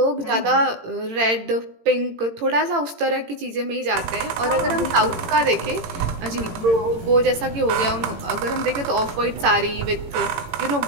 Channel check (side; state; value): left; late; 18 ms